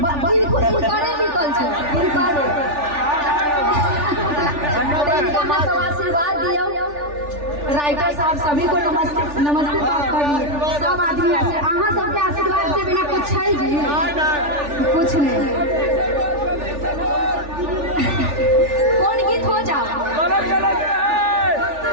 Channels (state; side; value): late; left; 3.4 ms